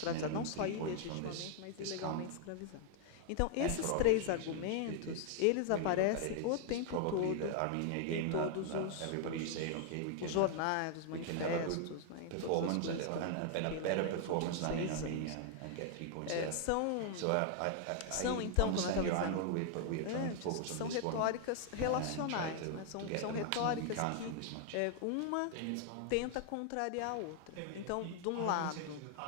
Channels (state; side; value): different; both; correlation 0.00